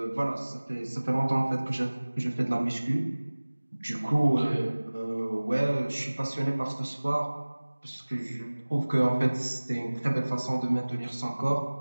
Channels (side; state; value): both; inverted; correlation -1.00